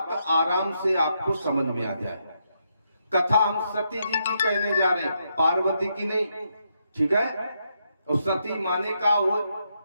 आराम से आपको समझ में आ जाए। कथा हम सती जी की कहने जा रहे हैं, पार्वती की नहीं, ठीक है। और सती माने का हो,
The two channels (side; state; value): both; inverted; correlation -0.80